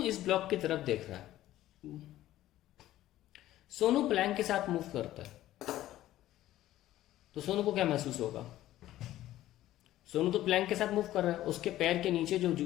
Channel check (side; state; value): right; quieter; 14.3 dB